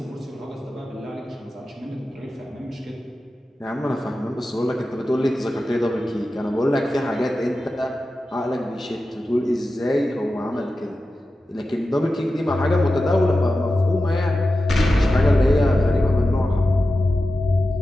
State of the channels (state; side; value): normal; both; correlation 0.93